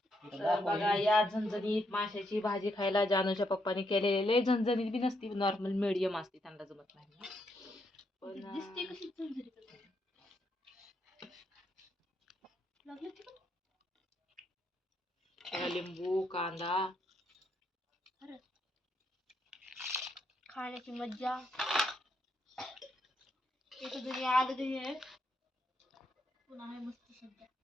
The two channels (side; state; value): both; normal; correlation 0.77